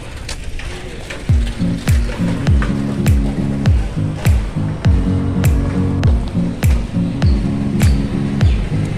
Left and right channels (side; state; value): both; identical; correlation 1.00